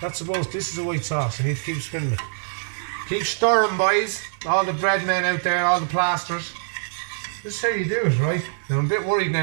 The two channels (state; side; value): silent; left; digital silence